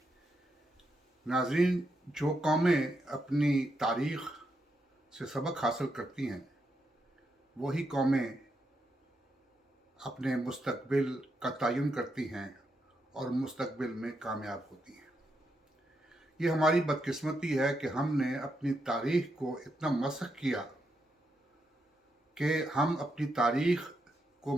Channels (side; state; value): both; normal; correlation 0.82